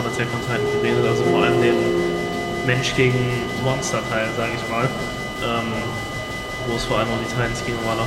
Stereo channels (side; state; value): both; identical; correlation 1.00